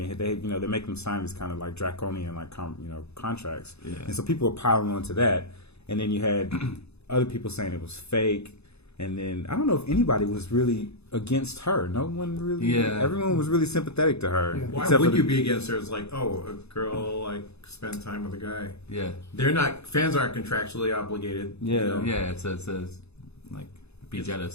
they make them sign these kind of like draconian like contracts, Yeah. and so people were piling on to that, and then you had other people saying it was fake, and then I don't know if anybody was really against her. No one really. Yeah. Everyone was really sympathetic to her. Yeah. Why except would for you the- be against her? It's like, oh, a girl like spend time with a guy. yeah, They're not fans aren't contractually obligated. you Yeah. know? yeah. It's like be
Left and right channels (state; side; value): late; right; 0.79 ms